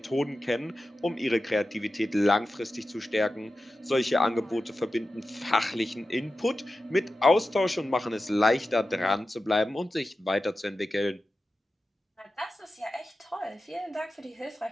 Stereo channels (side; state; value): both; normal; correlation 0.93